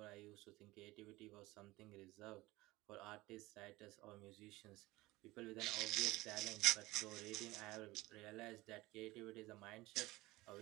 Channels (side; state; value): left; quieter; 19.8 dB